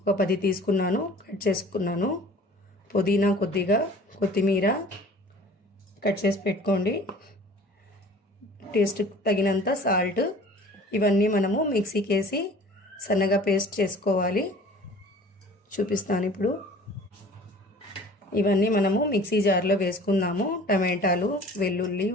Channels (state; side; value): normal; both; correlation 0.46